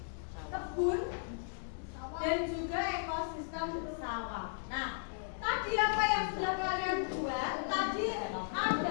kebun, dan juga ekosistem sawah. Nah, tadi apa yang sudah kalian buat tadi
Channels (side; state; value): right; silent; digital silence